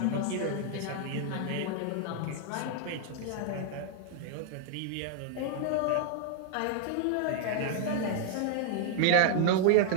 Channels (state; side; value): different; both; correlation 0.00